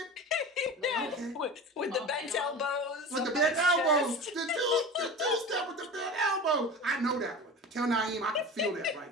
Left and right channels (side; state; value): both; normal; correlation 0.32